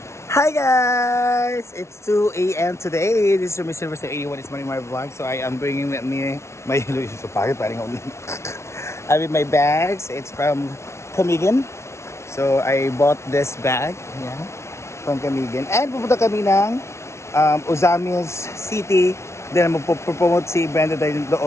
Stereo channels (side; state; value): right; late; 0.13 ms